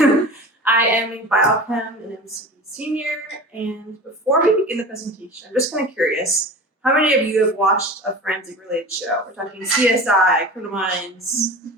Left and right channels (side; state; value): both; normal; correlation 0.35